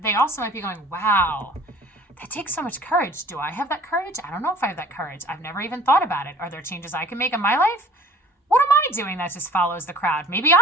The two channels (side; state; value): both; normal; correlation 0.50